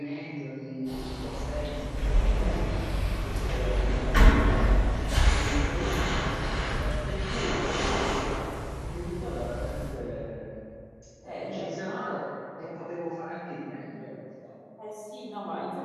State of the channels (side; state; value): both; identical; correlation 1.00